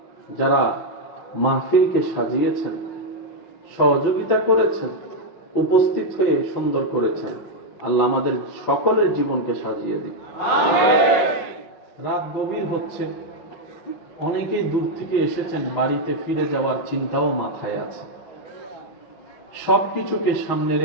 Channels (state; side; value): late; right; 5.5 ms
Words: যারা মাহফিলকে সাজিয়েছেন, সহযোগিতা করেছেন, উপস্থিত হয়ে সুন্দর করেছেন, আল্লাহ আমাদের সকলের জীবনকে সাজিয়ে দিন। রাত গভীর হচ্ছে, অনেকেই দূর থেকে এসেছেন, বাড়িতে ফিরে যাওয়ার চিন্তাও মাথায় আছে। সবকিছুকে সামনে